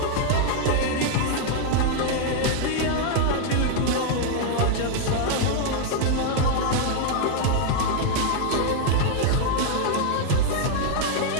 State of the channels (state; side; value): different; both; correlation 0.00